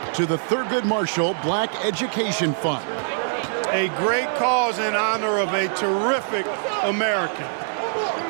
to the Thurgood Marshall Black Education Fund. A great cause in honor of a terrific American.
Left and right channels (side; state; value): left; silent; 63 dB below the other